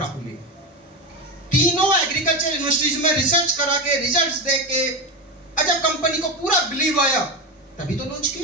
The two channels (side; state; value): both; normal; correlation 0.17